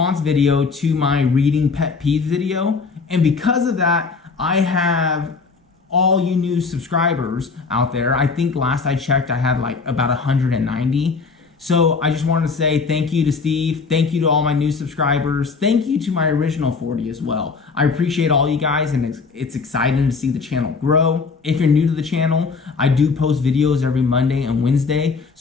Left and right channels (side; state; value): right; quieter; 4.7 dB